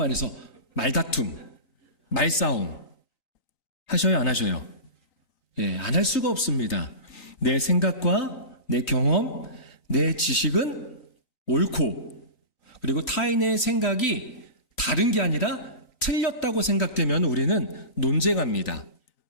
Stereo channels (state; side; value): late; right; 3.9 ms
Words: 말다툼, 말싸움. 하셔요, 안 하셔요? 예, 안 할 수가 없습니다. 내 생각과 내 경험, 내 지식은 옳고, 그리고 타인의 생각이 다른 게 아니라 틀렸다고 생각되면 우리는 논쟁합니다.